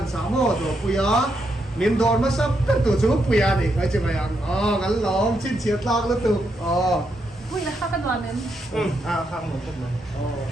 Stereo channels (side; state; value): both; normal; correlation 0.80